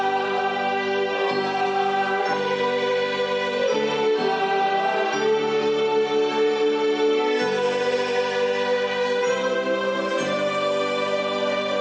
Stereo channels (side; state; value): both; identical; correlation 1.00